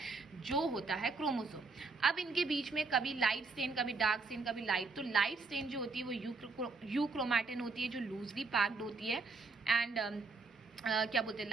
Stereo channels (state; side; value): quieter; left; 4.1 dB